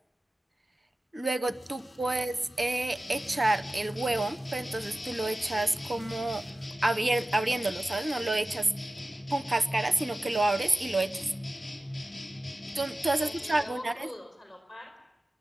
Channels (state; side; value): normal; both; correlation 0.96